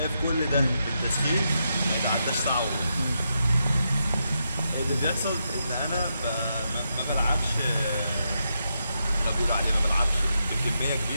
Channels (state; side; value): inverted; both; correlation -0.83